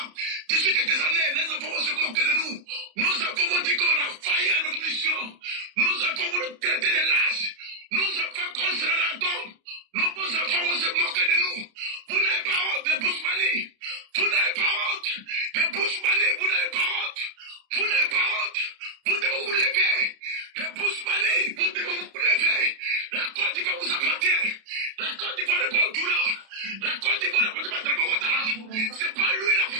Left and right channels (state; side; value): late; left; 31 ms